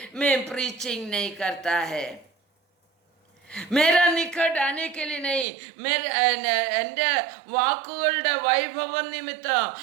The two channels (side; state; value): left; drops out; at 5.5 s